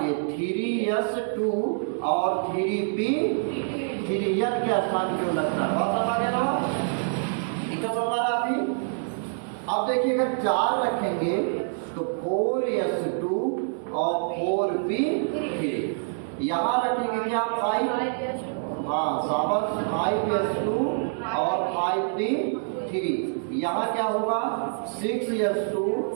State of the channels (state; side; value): silent; left; digital silence